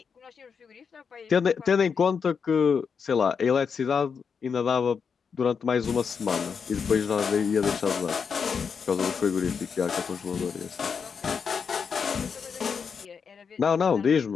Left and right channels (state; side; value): quieter; right; 6.2 dB